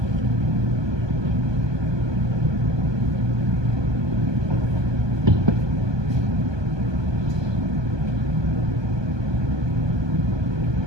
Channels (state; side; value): late; left; 1.2 ms